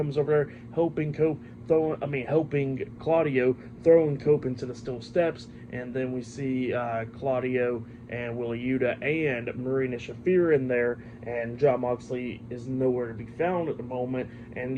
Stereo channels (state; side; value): identical; both; correlation 1.00